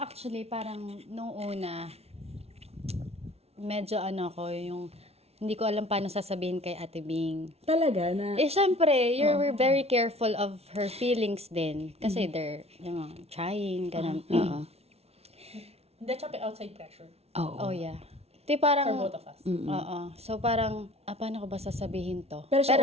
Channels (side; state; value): left; late; 0.30 ms